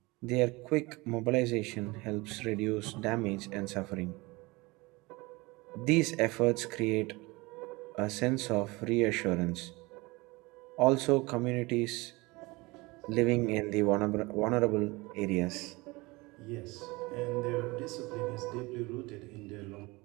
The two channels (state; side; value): quieter; left; 23.6 dB